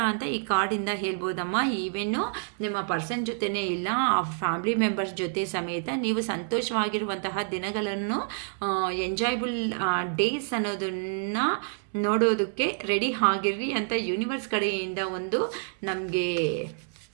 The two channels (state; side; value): silent; left; digital silence